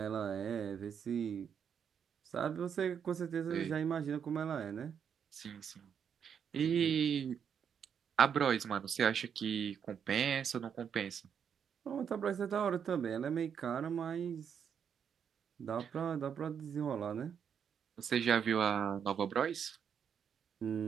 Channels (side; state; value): left; quieter; 7.7 dB